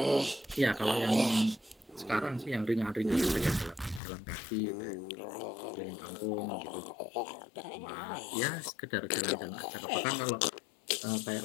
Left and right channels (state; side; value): drops out; right; at 4.0 s